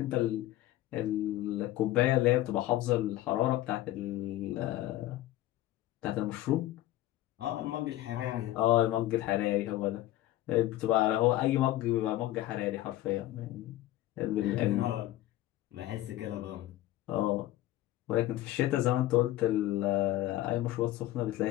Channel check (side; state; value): right; quieter; 15.2 dB